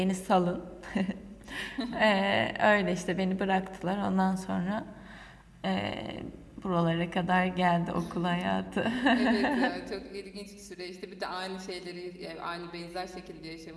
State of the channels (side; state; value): both; identical; correlation 1.00